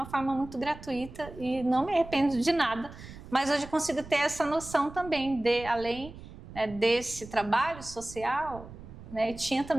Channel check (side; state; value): right; noise; rumble, 15 dB below the sound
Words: forma muito gratuita e não me arrependo de nada, mas hoje eu consigo ter essa noção também de, além, né, desse trabalho social, né, tinha